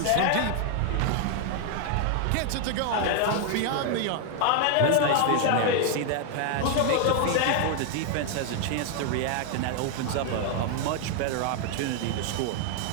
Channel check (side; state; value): both; different; correlation 0.00